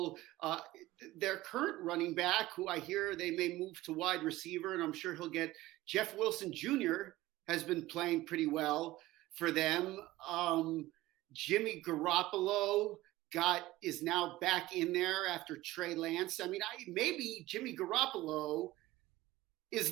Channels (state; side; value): quieter; left; 17.5 dB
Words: their current running back, who I hear they may move to wide receiver, and I'm sure he'll get Jeff Wilson Jr. has been playing pretty well for them. Jimmy Garoppolo is now back in there after Trey Lance. I mean, maybe Jimmy Garoppolo is